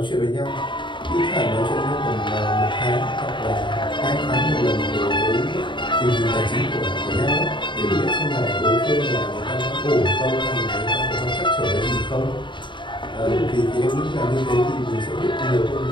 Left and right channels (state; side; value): late; right; 0.23 ms